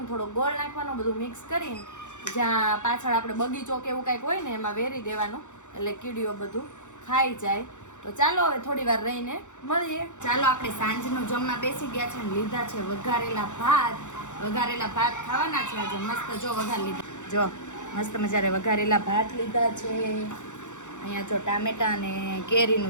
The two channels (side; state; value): right; late; 0.85 ms